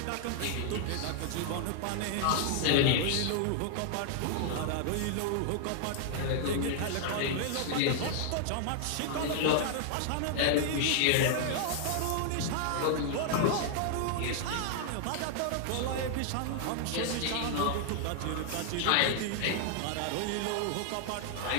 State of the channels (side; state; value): both; different; correlation 0.00